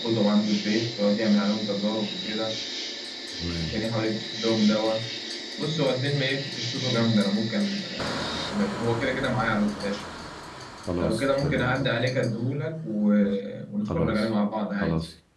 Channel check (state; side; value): identical; both; correlation 1.00